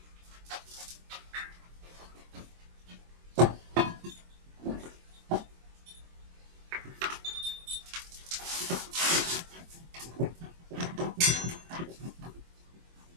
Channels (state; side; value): late; left; 24 ms